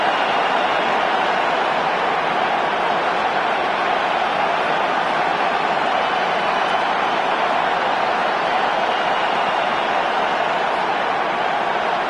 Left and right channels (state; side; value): identical; both; correlation 1.00